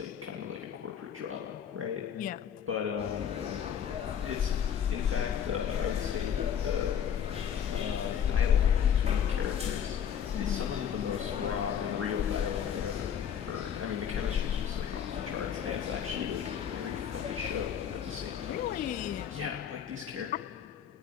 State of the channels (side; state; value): right; quieter; 8.5 dB